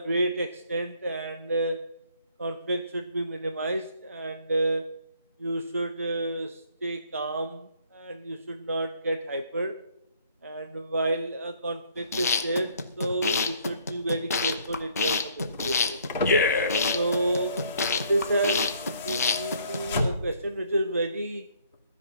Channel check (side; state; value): both; inverted; correlation -0.63